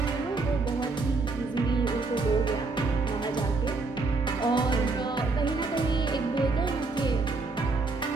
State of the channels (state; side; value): quieter; left; 3.8 dB